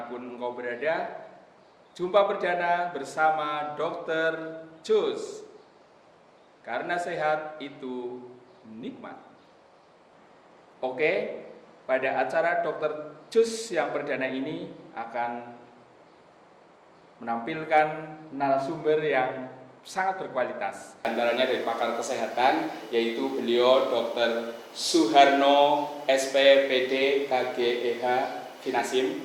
engkau berada, jumpa perdana bersama Dr. Cus. Karena sehat itu nikmat. Oke, pada acara Dr. Cus yang perdana ini akan menampilkan narasumber yang sangat berkualitas. Antaranya dari pakar kesehatan, yaitu beliau Dr. Suharno SPPD KGEH Finasim,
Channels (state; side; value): identical; both; correlation 1.00